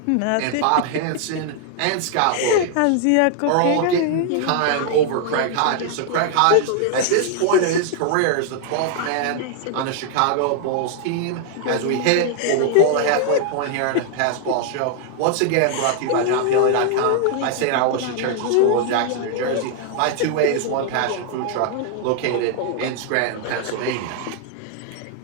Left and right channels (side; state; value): both; different; correlation 0.00